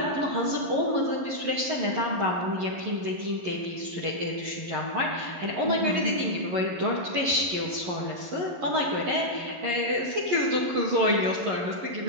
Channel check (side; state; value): left; late; 11 ms